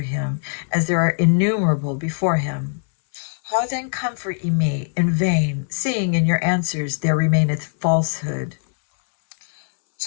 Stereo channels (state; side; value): silent; right; 64 dB below the other